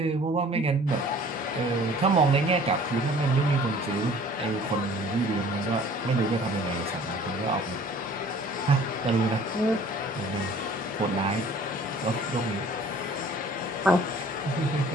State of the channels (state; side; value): normal; both; correlation 0.50